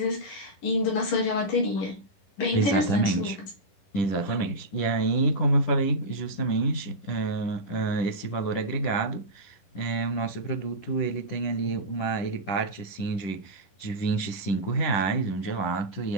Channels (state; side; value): late; right; 10 ms